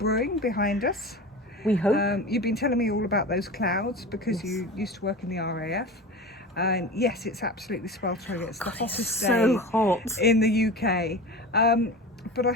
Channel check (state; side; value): normal; both; correlation 0.31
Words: behind us. We hope. You've been telling me all about those clouds because you used to work in the RAF. And yes, it's absolutely sweltering. It's the hottest day hot in the UK. But I